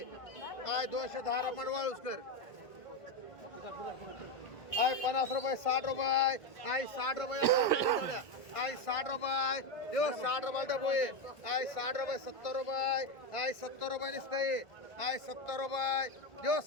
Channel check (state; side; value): late; right; 1.5 ms